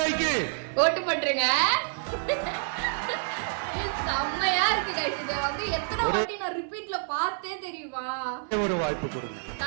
ஓட்டு பண்றீங்க. செம்மையா இருக்கு கைஸ். இத வந்து எத்தனை வாட்டி நான் ரிப்பீட்ல பார்த்தே தெரியுமா? ஒரு வாய்ப்பு கொடுங்க.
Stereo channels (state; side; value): silent; left; 55 dB below the other